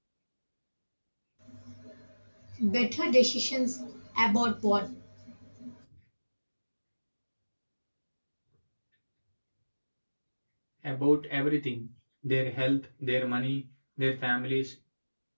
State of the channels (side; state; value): both; inverted; correlation -1.00